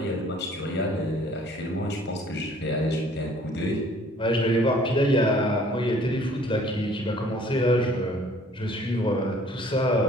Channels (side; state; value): both; normal; correlation 0.56